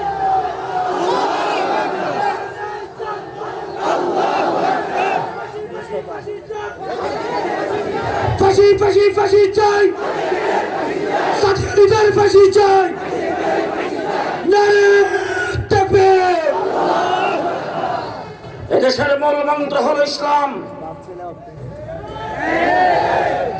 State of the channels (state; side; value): identical; both; correlation 1.00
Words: ফাঁসি ফাঁসি ফাঁসি চাই, সাথীদের ফাঁসি চাই। এদেশের মূল মন্ত্র হল ইসলাম।